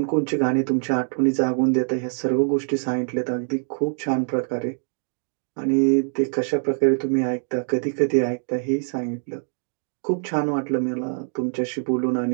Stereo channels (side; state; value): left; silent; 60 dB below the other